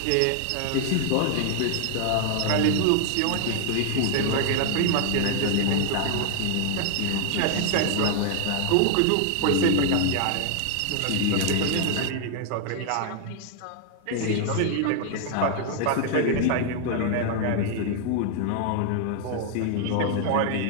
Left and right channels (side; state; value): both; different; correlation 0.00